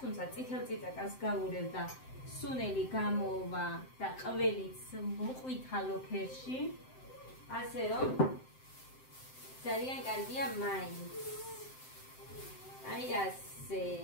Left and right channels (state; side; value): late; right; 7.7 ms